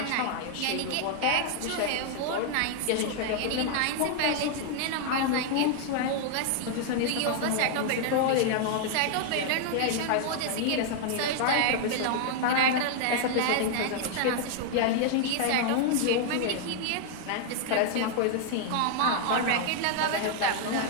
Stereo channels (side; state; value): both; different; correlation 0.00